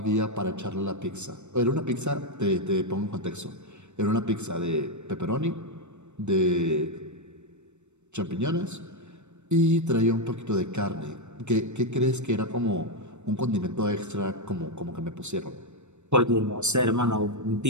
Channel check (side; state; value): left; late; 0.83 ms